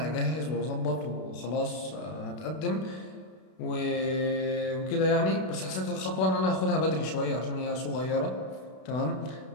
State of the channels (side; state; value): right; late; 32 ms